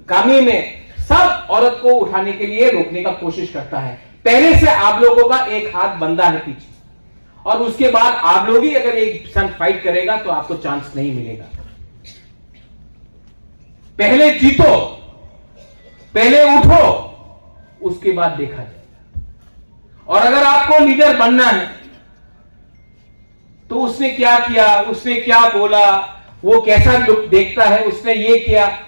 कामी में, सब औरत को उठाने के लिए रोकने का कोशिश करता है। पहले से आप लोगों का एक हाथ बंधा है पीछे, और उसके बाद आप लोग ही अगर एक संग फाइट करेगा तो आपको चांस नहीं मिलेगा। पहले जीतो, पहले उठो, उसके बाद देखा जाएगा। और अगर आपको लीडर बनना है तो उसने क्या किया, उसने क्या बोला, वो कैसा लुक देखता है, उसने ये किया,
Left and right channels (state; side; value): inverted; both; correlation -1.00